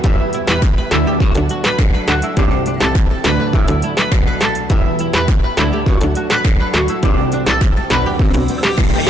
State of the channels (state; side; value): normal; both; correlation 0.79